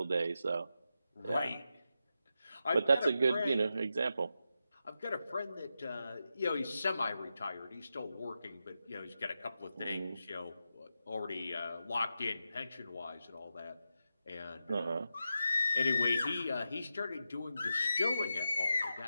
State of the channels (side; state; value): both; inverted; correlation -0.89